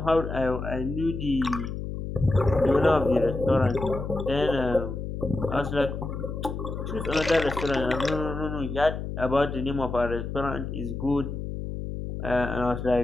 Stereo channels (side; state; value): left; noise; hum, 6 dB below the sound